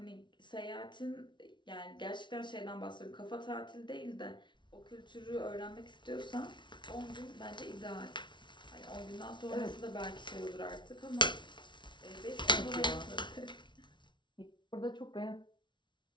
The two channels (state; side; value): late; right; 0.23 ms